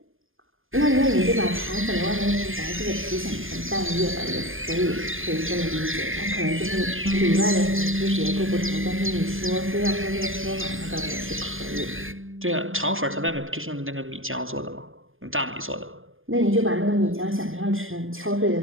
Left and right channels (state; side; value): late; left; 0.59 ms